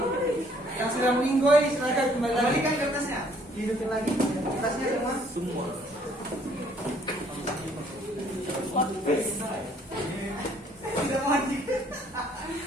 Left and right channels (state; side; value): normal; both; correlation 0.62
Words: Yang sudah meninggoy, silakan kembali lagi. Kembalikan kertasnya. Hidupin lagi kertasnya semua. Semua. Tidak maju.